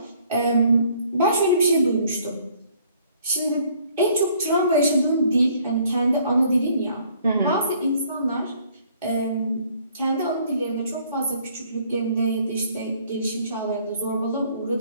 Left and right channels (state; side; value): inverted; both; correlation -0.61